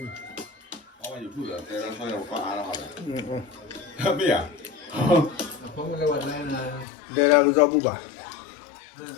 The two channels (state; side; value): drops out; right; at 6.9 s